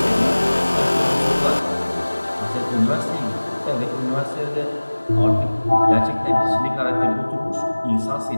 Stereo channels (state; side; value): inverted; both; correlation -1.00